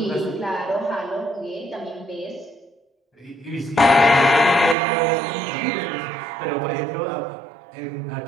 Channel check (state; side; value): drops out; left; at 4.8 s